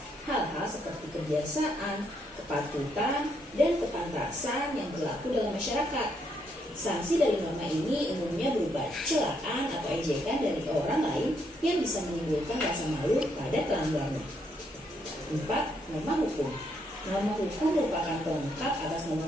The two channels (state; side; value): normal; both; correlation 0.74